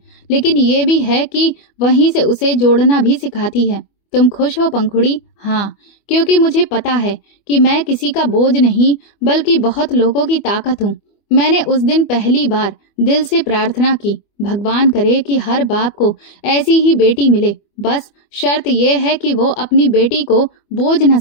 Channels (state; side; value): late; right; 25 ms